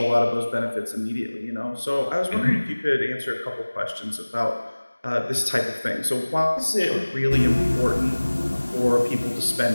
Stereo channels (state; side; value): inverted; both; correlation -1.00